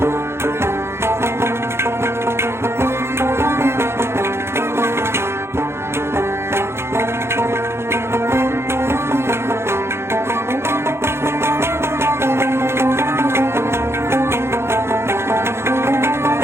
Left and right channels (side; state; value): left; late; 0.12 ms